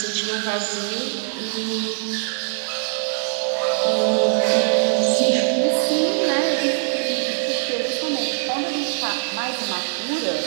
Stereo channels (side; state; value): left; silent; 64 dB below the other